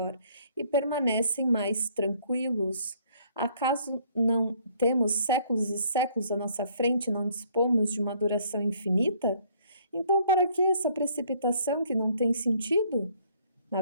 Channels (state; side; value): inverted; both; correlation -0.62